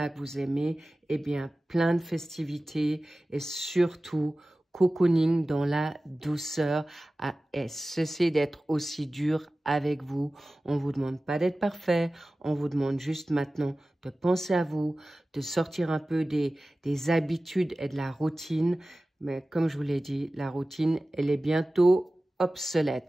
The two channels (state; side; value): normal; both; correlation 0.96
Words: que vous aimez, eh bien, plein de festivités et surtout, cocooning dans la douceur. Et cessez d'être aussi dur avec vous. On ne vous demande pas d'être parfait. On vous demande juste maintenant de penser à vous, de sortir un peu des habitudes et de la routine. Mais comme je vous l'ai dit, la routine, elle est bientôt obsolète.